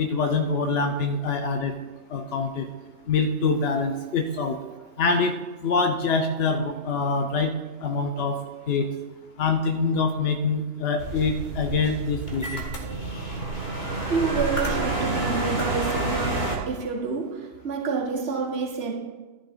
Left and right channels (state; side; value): late; left; 2.9 ms